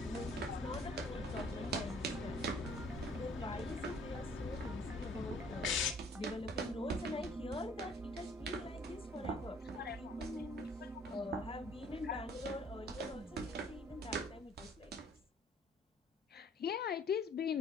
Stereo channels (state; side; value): normal; both; correlation 0.57